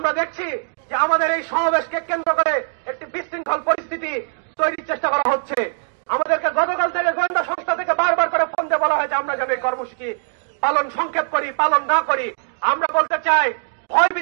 দেখছি যে আমাদের এই সমাবেশকে কেন্দ্র করে একটি বিশৃঙ্খল পরিস্থিতি তৈরির চেষ্টা করা হচ্ছে। আমাদেরকে গতকাল থেকে গোয়েন্দা সংস্থা থেকে বারবার করে ফোন দিয়ে বলা হয়েছে আমরা যেন এই কর্মসূচি পালন সংক্ষেপ করি, পালন না করি। আমরা বলতে চাই,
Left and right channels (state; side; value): silent; left; digital silence